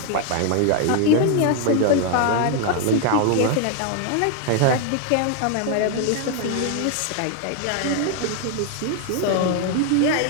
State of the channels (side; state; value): both; different; correlation 0.00